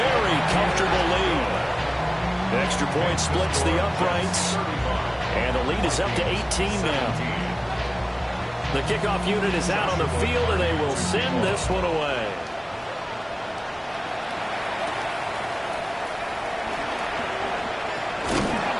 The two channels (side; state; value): both; identical; correlation 1.00